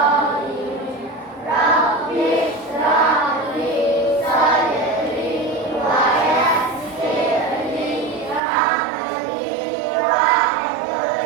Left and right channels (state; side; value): drops out; left; at 8.4 s